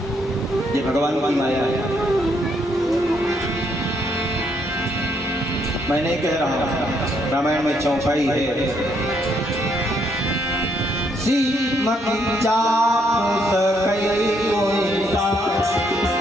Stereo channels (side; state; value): both; normal; correlation 0.72